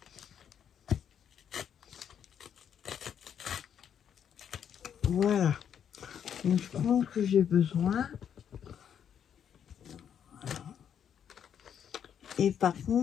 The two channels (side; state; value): right; quieter; 8.6 dB